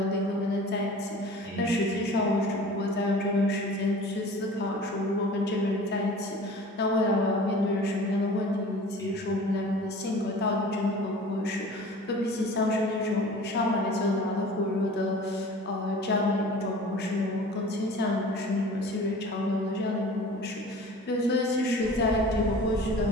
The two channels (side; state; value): both; normal; correlation 0.42